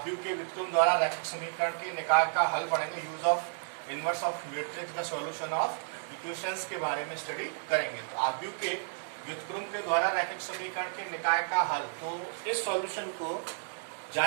के व्युत्क्रम द्वारा रैखिक समीकरण के निकाय का हल पढ़ेंगे। Use of inverse of matrix का सॉल्यूशन ऑफ इक्वेशंस के बारे में स्टडी करेंगे। तो आव्यूह के व्युत्क्रम के द्वारा रैखिक समीकरण के निकाय का हल, तो इस सॉल्यूशन को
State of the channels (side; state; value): left; silent; digital silence